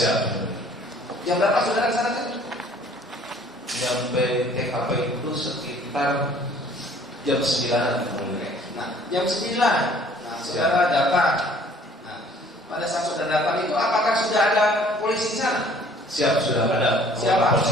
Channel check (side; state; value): both; normal; correlation 0.55